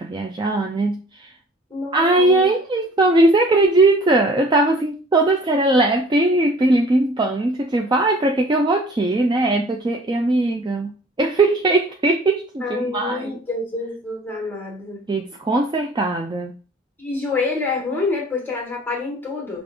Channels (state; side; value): normal; both; correlation 0.50